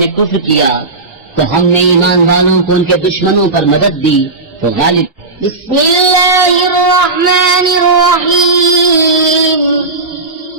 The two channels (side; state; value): left; quieter; 3.4 dB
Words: कुफ्र किया, तो हमने ईमान वालों को उनके दुश्मनों पर मदद दी तो गालिब। बिस्मिल्लाहिर्रहमानिर्रहीम,